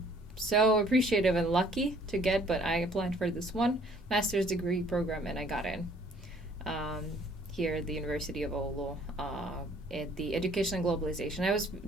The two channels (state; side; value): normal; both; correlation 0.58